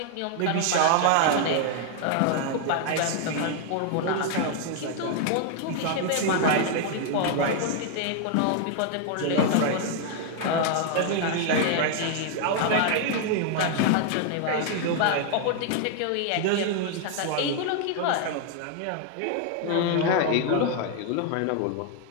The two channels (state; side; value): different; both; correlation 0.00